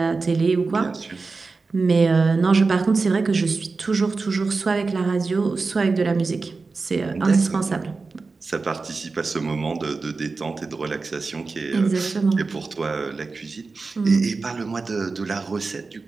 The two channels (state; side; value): quieter; left; 4.1 dB